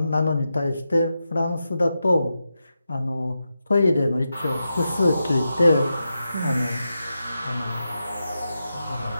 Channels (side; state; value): both; inverted; correlation -0.89